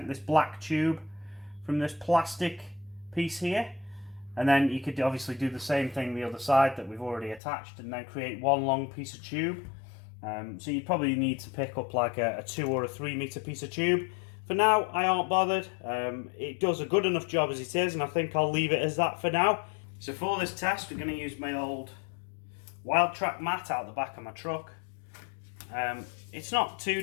this black tube from this plastic piece here, and then you could obviously do the same thing the other side that we've already attached, and then create one long piece of tube. So you probably need to pick up like a 2 or a 3 metre piece of tube. For now, I aren't bothered. It does a good enough job as it is, and I think I'll leave it as that for now. So for this test, we're going to use my old Wild Track mat out the back of my truck. It's not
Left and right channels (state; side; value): drops out; right; at 7.4 s